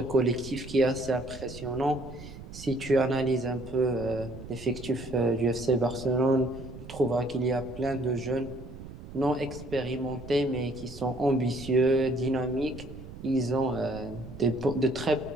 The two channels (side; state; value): right; noise; rumble, 13 dB below the sound